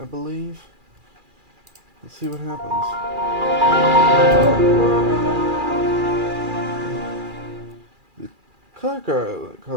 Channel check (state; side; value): late; left; 2.4 ms